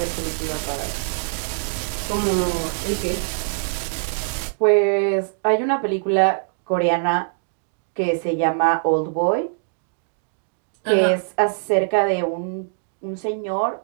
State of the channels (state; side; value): silent; left; digital silence